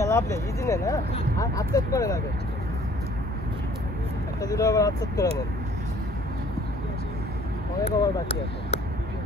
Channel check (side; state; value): both; normal; correlation 0.56